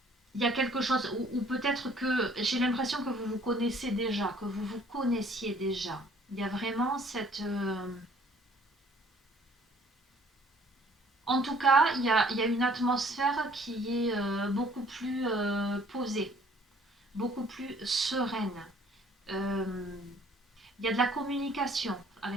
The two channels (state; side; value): normal; both; correlation 0.58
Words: y a quelque chose, ou peut-être que j'ai l'impression que vous vous connaissez déjà, que vous vous connaissiez déjà. Il y a vraiment cette... En tout cas, il y a une atmosphère qui est beaucoup plus posée, beaucoup plus sereine. Il y a de la communication,